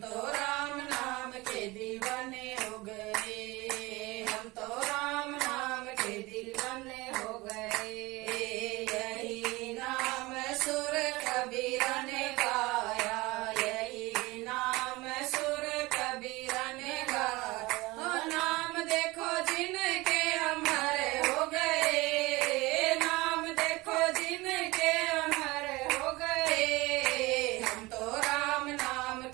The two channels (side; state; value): left; quieter; 21.7 dB